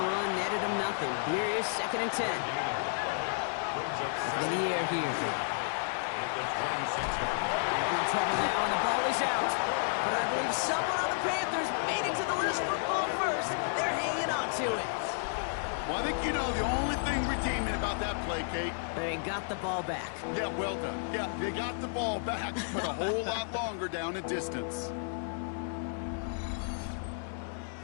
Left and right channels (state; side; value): silent; right; digital silence